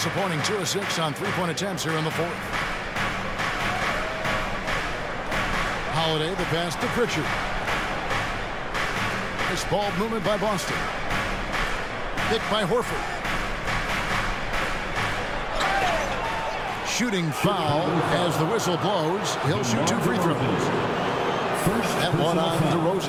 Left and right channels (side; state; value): both; identical; correlation 1.00